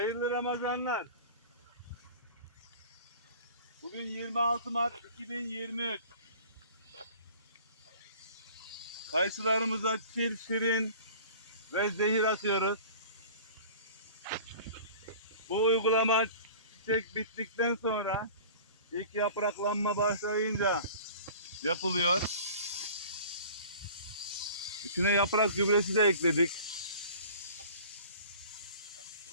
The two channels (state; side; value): inverted; both; correlation -0.44